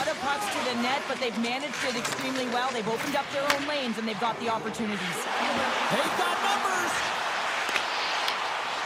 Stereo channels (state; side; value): identical; both; correlation 1.00